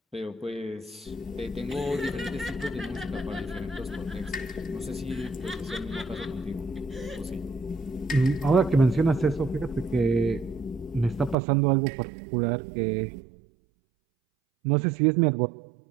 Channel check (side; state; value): left; drops out; at 11.4 s